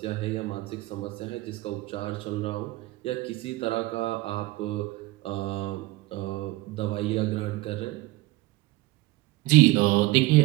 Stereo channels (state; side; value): quieter; left; 19.2 dB